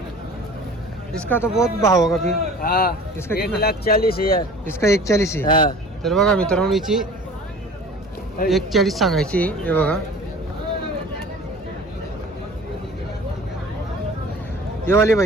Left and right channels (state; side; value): normal; both; correlation 0.44